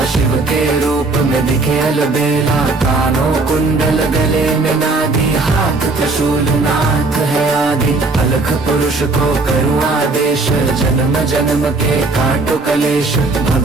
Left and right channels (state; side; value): quieter; left; 3.4 dB